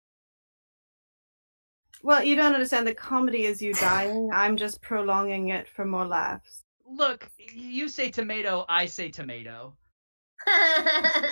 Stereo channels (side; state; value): both; inverted; correlation -1.00